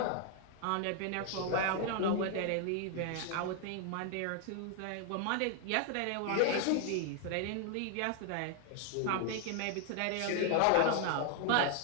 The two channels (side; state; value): both; different; correlation 0.00